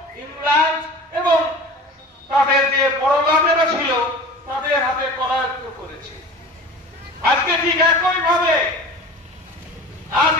ইংল্যান্ড এবং তাদের যে পরগামেরা ছিল তাদের হাতে করায়ত্ত করেছে। আজকে ঠিক একই ভাবে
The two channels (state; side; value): normal; both; correlation 0.38